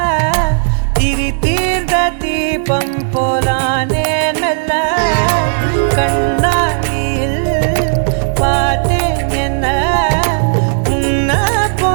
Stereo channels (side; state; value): left; silent; digital silence